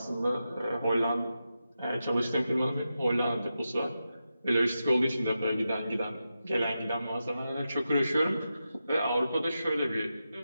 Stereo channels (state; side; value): inverted; both; correlation -0.90